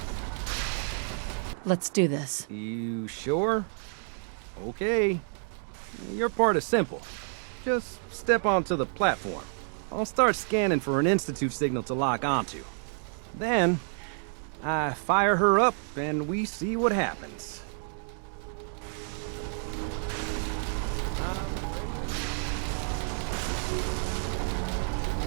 Let's do this. You sure? Okay. Your part is simple. Just step onto the platform. I'll start scanning for an Institute signal to lock onto. Then, I fire her up and we see what happens.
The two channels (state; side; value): silent; left; 58 dB below the other